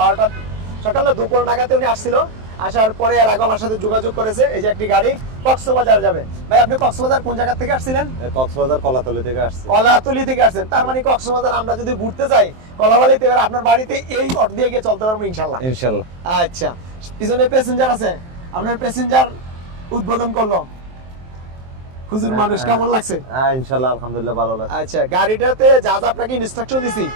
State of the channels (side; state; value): left; late; 23 ms